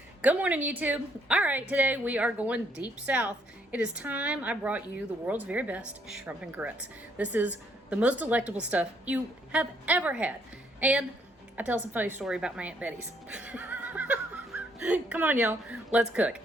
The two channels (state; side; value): normal; both; correlation 0.69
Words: Good morning, YouTube. All right, today we are going deep south. It is time I brought you the world's very best shrimp and grits. This is the most delectable stuff you have ever had. And I tell some funny story about my Aunt Betty's. Come on, y'all. Let's cook.